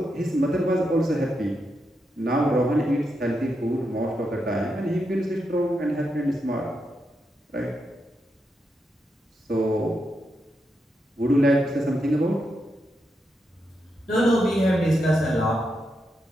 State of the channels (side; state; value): both; normal; correlation 0.84